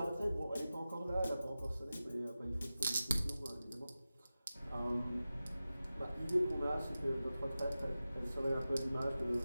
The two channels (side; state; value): both; inverted; correlation -0.95